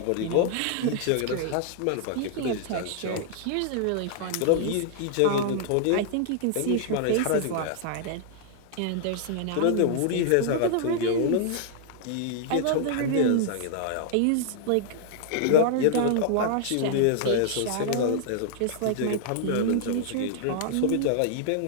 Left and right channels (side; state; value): both; different; correlation -0.01